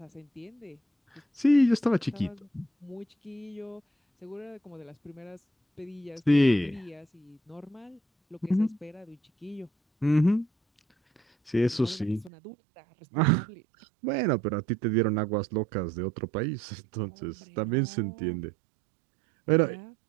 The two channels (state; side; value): drops out; left; at 12.3 s